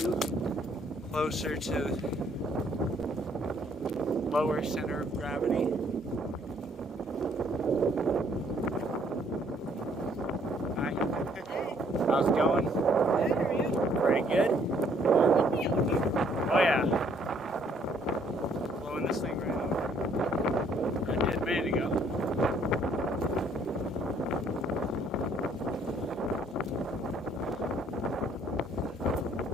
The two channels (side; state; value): both; normal; correlation 0.65